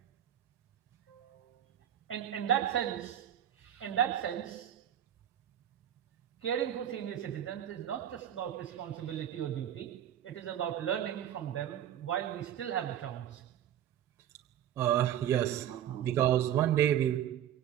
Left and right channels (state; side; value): quieter; left; 10.7 dB